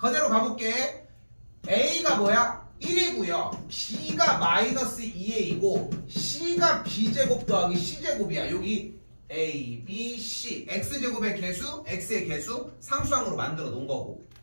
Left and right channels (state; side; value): inverted; both; correlation -1.00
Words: 가볼게. A가 뭐야? 1이고요. B가 마이너스 2의 2고 C가 B제곱 더하기 C제곱이야. 여기 A, B, C. X제곱의 개수, X의 개수 상수항으로 만들어 놓은 거고.